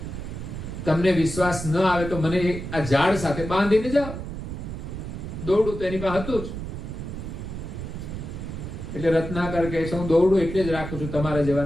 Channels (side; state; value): right; noise; rumble, 7 dB below the sound